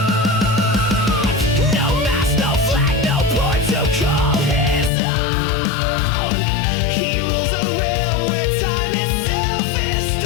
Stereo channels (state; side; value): drops out; right; at 4.9 s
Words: No mask, no flag, no port to call his own. He rules a realm where time itself is